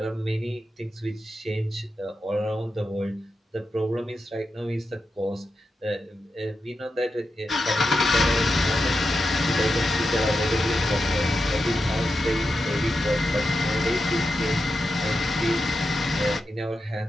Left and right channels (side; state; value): both; normal; correlation 0.88